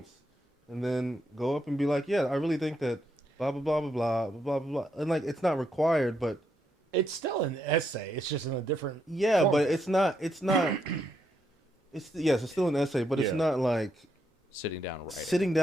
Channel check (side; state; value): both; normal; correlation 0.78